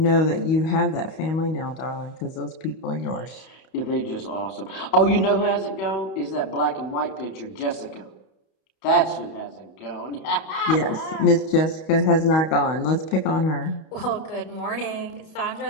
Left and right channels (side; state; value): right; late; 31 ms